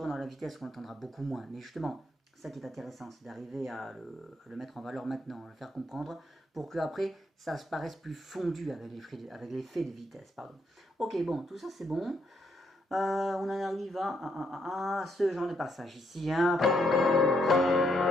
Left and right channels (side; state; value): both; normal; correlation 0.75